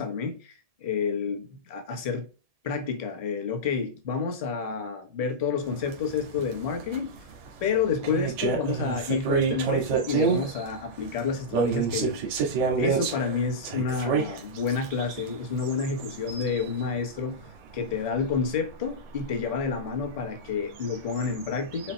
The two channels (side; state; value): left; late; 1.7 ms